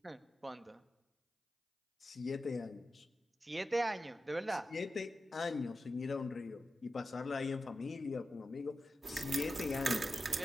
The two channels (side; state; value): both; normal; correlation 0.92